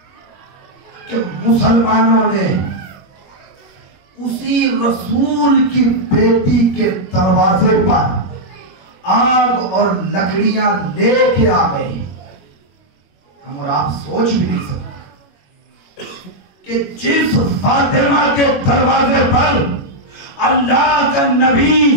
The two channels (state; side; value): late; right; 21 ms